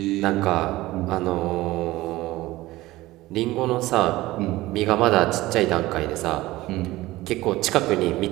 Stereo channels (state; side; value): quieter; left; 17.9 dB